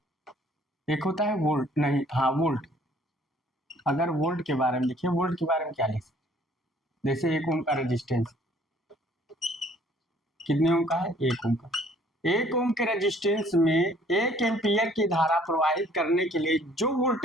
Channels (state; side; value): normal; both; correlation 0.58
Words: एक होता है वोल्ट, नहीं हाँ वोल्ट। अगर वोल्ट के बारे में लिखिए, वोल्ट के बारे में क्या लिख सकते, जैसे 1 ओम का रेजिस्टेंस, कितने ओम का है, 1 ओम का। 1 ओम के रेजिस्टेंस में 1 एम्पियर की धारा प्रवाहित करने के लिए जो